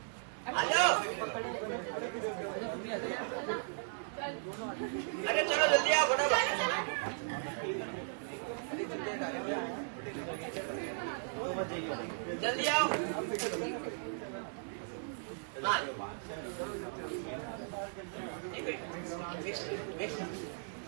आ जाओ। अरे चलो जल्दी आओ फटाफट। जल्दी आओ। हाँ मिक्स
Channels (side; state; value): left; silent; digital silence